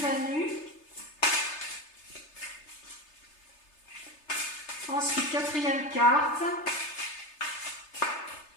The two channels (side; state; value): right; late; 3.3 ms